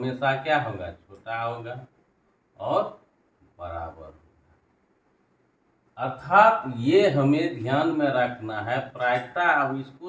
क्या होगा? छोटा होगा और बराबर होगा। अर्थात ये हमें ध्यान में रखना है प्रायिकता। अब इसको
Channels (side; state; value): both; identical; correlation 1.00